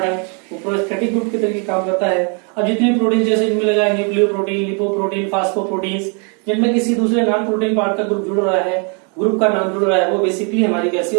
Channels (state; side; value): quieter; left; 37.1 dB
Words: है वो प्रोस्थेटिक ग्रुप की तरीके काम करता है। अब जितने प्रोटीन जैसे इनमें लगा है न्यूक्लियोप्रोटीन, लिपोप्रोटीन, फास्फोप्रोटीन्स, जिनमें किसी दूसरे नॉन प्रोटीन पार्ट का ग्रुप जुड़ रहा है, ग्रुप का नाम जुड़ रहा है, वो बेसिकली हमारी कैसी